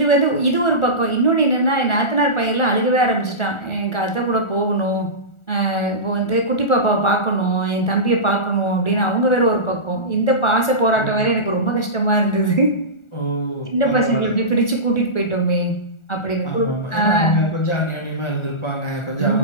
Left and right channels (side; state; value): right; late; 1.4 ms